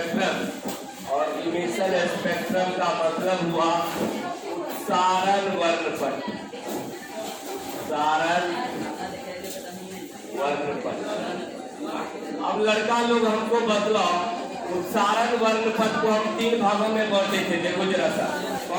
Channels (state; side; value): identical; both; correlation 1.00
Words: और इमिशन स्पेक्ट्रम का मतलब हुआ उत्सारण वर्णपट। उत्सारण वर्णपट। अब लड़का लोग हमको बतलाओ, उत्सारण वर्णपट को हम तीन भागों में बांटे थे। देखो जरा सा,